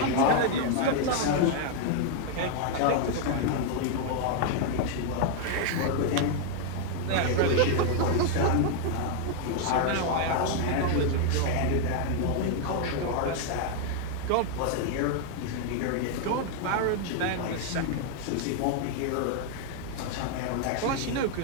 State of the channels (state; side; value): different; both; correlation 0.00